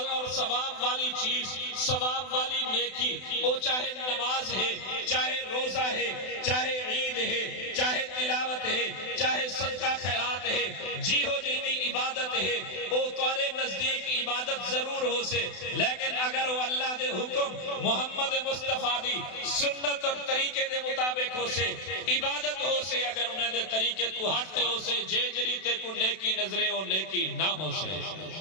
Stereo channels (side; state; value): right; late; 32 ms